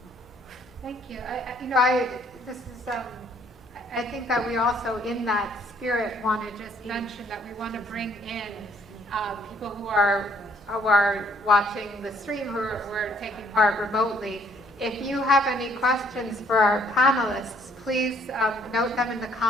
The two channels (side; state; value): both; normal; correlation 0.64